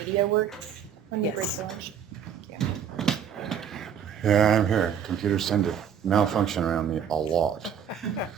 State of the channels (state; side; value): quieter; left; 8.2 dB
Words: works when you break for lunch? Yeah, I'm here. Computers tend to malfunction around me a lot.